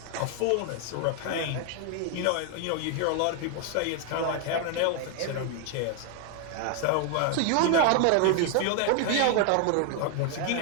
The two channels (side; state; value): both; different; correlation 0.00